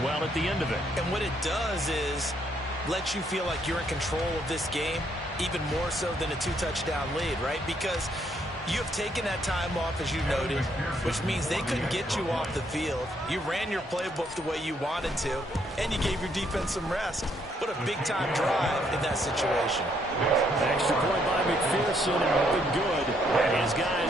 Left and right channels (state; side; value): normal; both; correlation 0.71